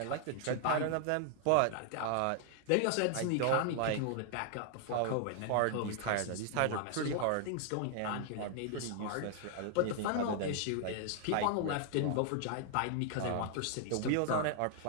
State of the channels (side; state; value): both; different; correlation 0.00